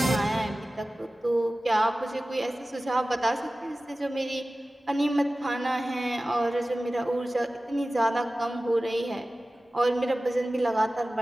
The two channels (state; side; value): normal; both; correlation 0.96